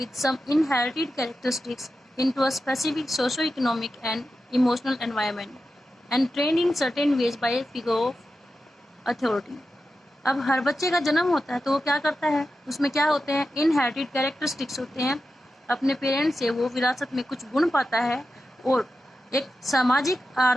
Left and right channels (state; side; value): normal; both; correlation 0.91